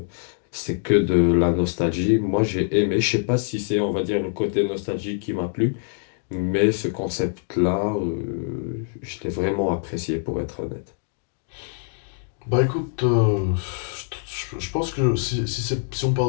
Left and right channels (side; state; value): right; silent; digital silence